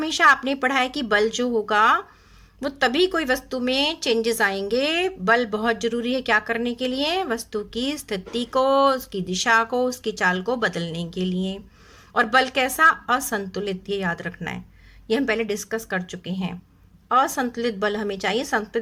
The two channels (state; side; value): identical; both; correlation 1.00